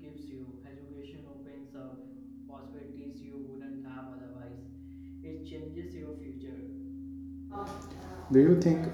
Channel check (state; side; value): identical; both; correlation 1.00